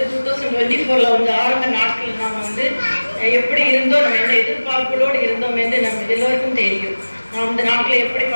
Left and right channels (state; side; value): inverted; both; correlation -1.00